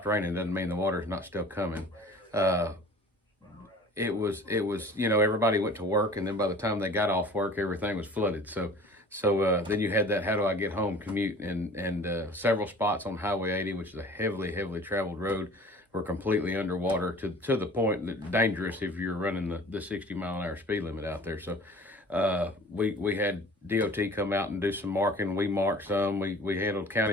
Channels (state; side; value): normal; both; correlation 0.45